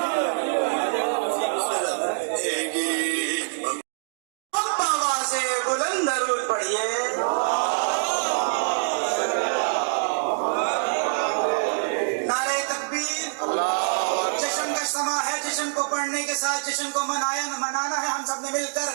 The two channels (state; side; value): silent; left; digital silence